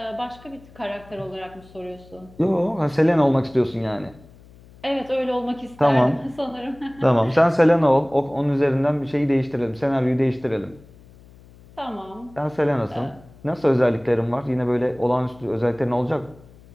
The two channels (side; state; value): left; noise; hum, 24 dB below the sound